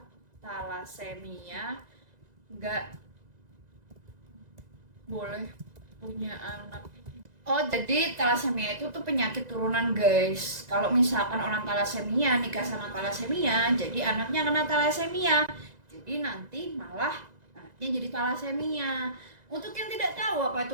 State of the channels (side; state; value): left; late; 2.0 ms